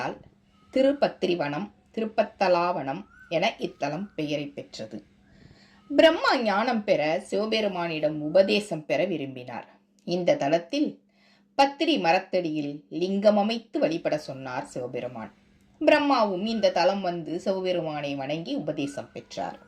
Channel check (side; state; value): both; identical; correlation 1.00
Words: திருப்பத்திரிவனம், திருப்பத்தலாவனம் என இத்தலம் பெயரை பெற்றது. பிரம்மா ஞானம் பெற சிவபெருமானிடம் உபதேசம் பெற விரும்பினார். இந்த தலத்தில் பத்திரி மரத்தடியில் லிங்கம் அமைத்து வழிபட சொன்னார் சிவபெருமான். பிரம்மாவும் இந்த தலம் வந்து சிவபெருமானை வணங்கி உபதேசம் பெற்றார்.